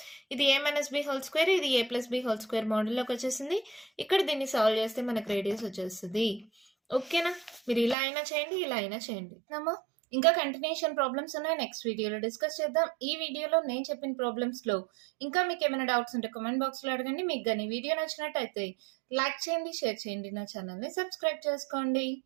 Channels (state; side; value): drops out; left; at 8.0 s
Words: ఇది ఏ మైనస్ బి హోల్ స్క్వేర్, ఇది ఏ ప్లస్ బి హోల్ స్క్వేర్ మోడల్లోకి వచ్చేసింది. ఇక్కడ దీన్ని సాల్వ్ చేస్తే మనకు రేడియస్ వచ్చేస్తుంది. ఓకేనా? మీరు ఇలా అయినా చేయండి, ఇలా అయినా చేయండి. నమ్మా ఇంకా కంటిన్యూషన్ ప్రాబ్లమ్స్ ఉన్నాయి, నెక్స్ట్ వీడియోలో డిస్కస్ చేద్దాం. ఈ వీడియోలో నేను చెప్పిన ప్రాబ్లమ్స్లో ఇంకా మీకు ఏమైనా డౌట్స్ ఉంటే కామెంట్ బాక్స్లో అడగండి. మీకు కానీ వీడియో నచ్చినట్టయితే లైక్ చేయండి, షేర్ చేయండి, నా ఛానల్ని సబ్స్క్రైబ్ చేసుకోండి.